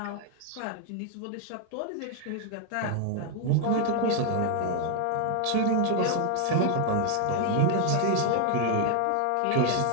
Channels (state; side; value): different; both; correlation 0.00